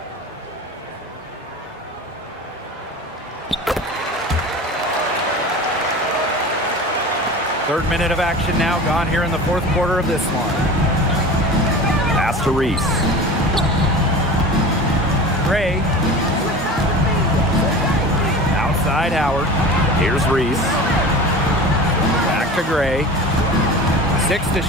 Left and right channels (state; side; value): normal; both; correlation 0.35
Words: Third minute of action now gone here in the fourth quarter of this one. Pass to Reese. Gray. Outside Howard. Here's Reese. Back to Gray. 6 to